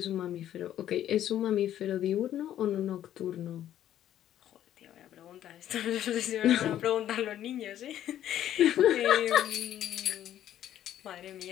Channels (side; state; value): right; quieter; 11.5 dB